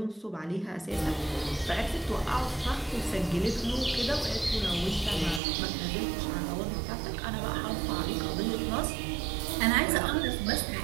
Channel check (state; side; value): drops out; left; at 5.4 s